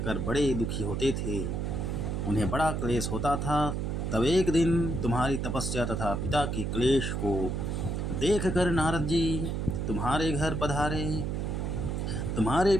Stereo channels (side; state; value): right; noise; hum, 1 dB below the sound